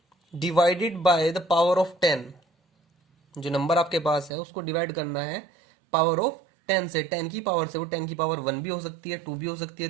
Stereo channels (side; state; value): left; drops out; at 4.3 s